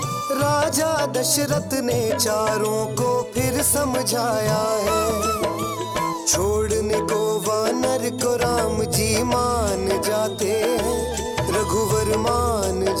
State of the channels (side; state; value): both; identical; correlation 1.00